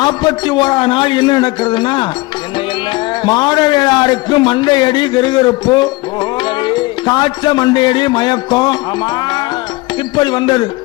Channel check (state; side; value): quieter; right; 22.3 dB